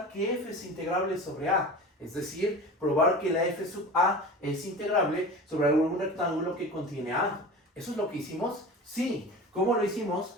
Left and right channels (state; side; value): normal; both; correlation 0.34